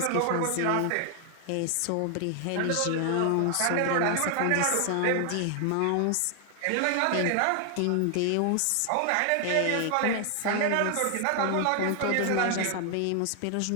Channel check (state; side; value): different; both; correlation 0.00